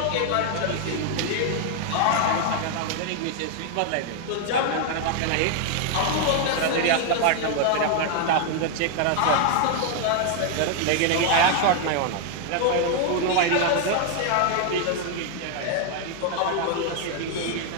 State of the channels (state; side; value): different; both; correlation 0.00